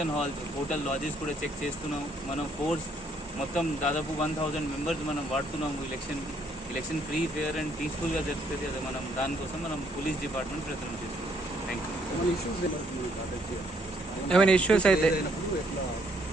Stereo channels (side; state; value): both; normal; correlation 0.68